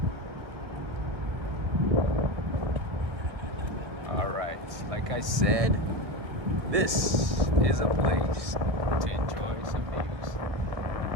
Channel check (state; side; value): late; left; 1.6 ms